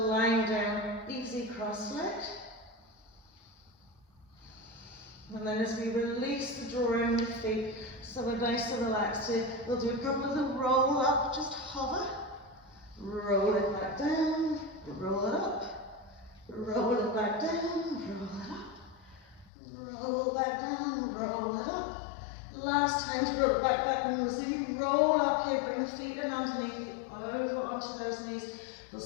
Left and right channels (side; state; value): right; drops out; at 19.5 s